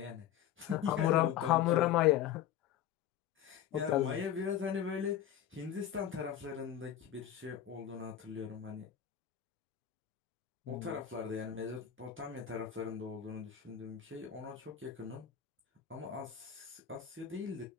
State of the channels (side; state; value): right; quieter; 10.1 dB